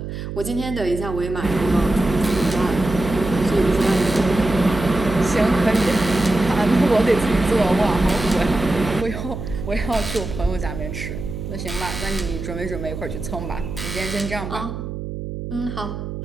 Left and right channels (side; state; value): right; noise; hum, 7 dB below the sound